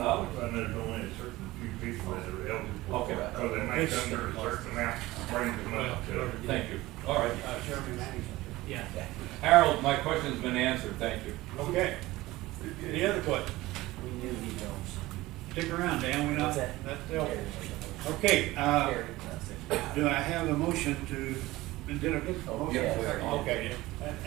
And there's only a certain few people that are eligible. Okay. So they make under a certain amount, brings them up to. Thank you. All right. Jeremy Manning's up here. Yeah. Harold, my question's been answered. Thank you. Okay. Any other questions? We knew he knows. Stick around, Dan, we not, What's that? that's helpful. Okay, do I have a motion to, did I get a motion? Yeah. Okay,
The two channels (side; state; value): left; quieter; 18.5 dB